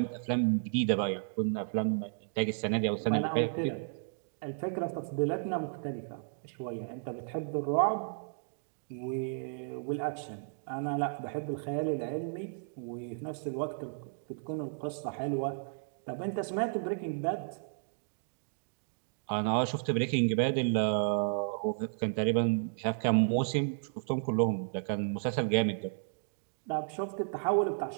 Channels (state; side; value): silent; left; digital silence